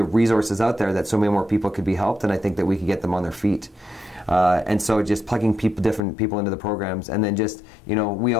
resources out there, that so many more people could be helped, and I think that we could get them on their feet. And so just plugging different people into the programs, and then just, you know, we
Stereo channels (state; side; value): drops out; right; at 6.1 s